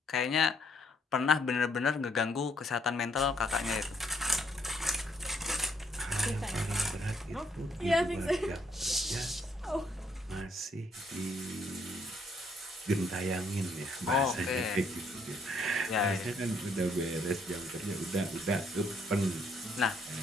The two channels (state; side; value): normal; both; correlation 0.69